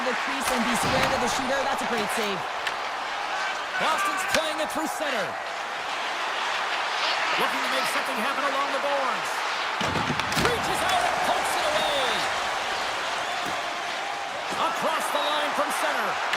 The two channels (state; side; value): identical; both; correlation 1.00